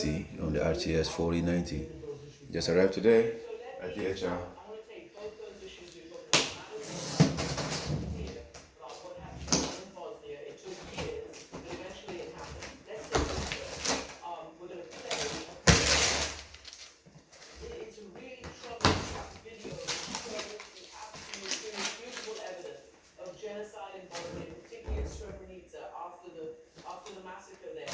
on the RTS 4090. Just arrived today at DHL.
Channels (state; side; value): identical; both; correlation 1.00